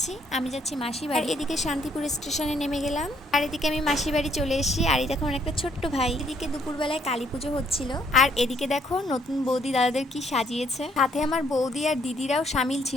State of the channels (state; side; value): normal; both; correlation 0.67